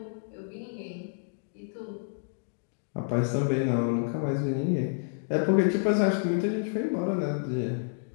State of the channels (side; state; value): right; silent; digital silence